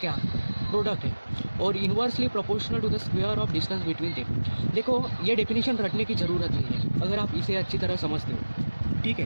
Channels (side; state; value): both; inverted; correlation -1.00